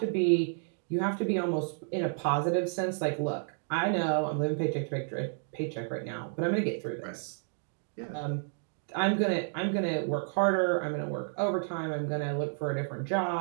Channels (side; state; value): left; silent; digital silence